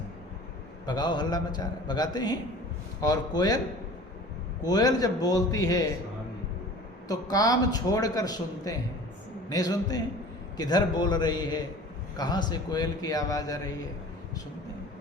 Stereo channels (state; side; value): normal; both; correlation 0.42